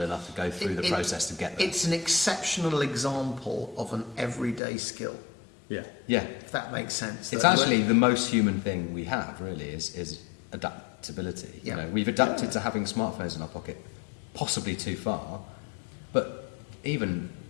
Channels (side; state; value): right; drops out; at 4.6 s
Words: enough to go through the process to get there. It's an exceptional example of an everyday skill. Yeah. If that makes sense. It's actually the most human thing we have, really, is adaptability. Yeah. We've adapted to having smartphones in our pocket, possibly too far, but even